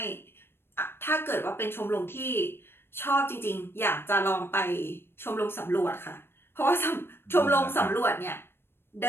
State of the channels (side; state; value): right; late; 0.11 ms